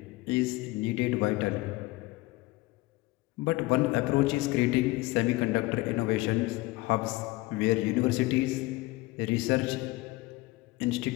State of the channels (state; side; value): quieter; right; 20.9 dB